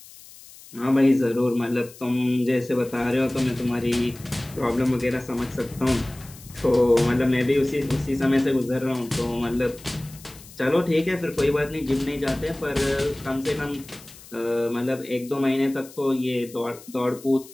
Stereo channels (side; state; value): left; noise; hiss, 20 dB below the sound